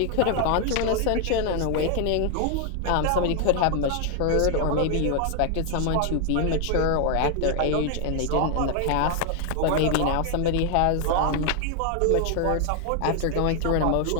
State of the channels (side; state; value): both; different; correlation 0.00